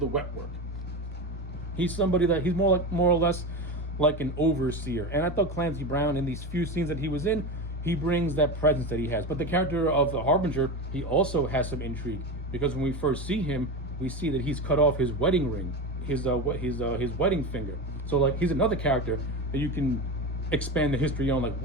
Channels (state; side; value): normal; both; correlation 0.22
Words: wet work. He's somebody that he's more or less like an overseer. And I thought Clancy Brown, in these few scenes that he was in, he brings that presence that he has. But the character of the Harbinger, he also has some intrigue, because when we first see him, we see that he's cut off his wedding ring, his wedding finger. So like he's another character that you can expand the history on. Like,